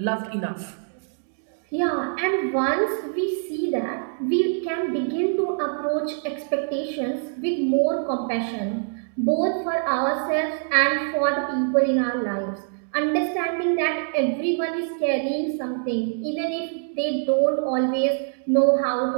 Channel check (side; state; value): left; silent; 62 dB below the other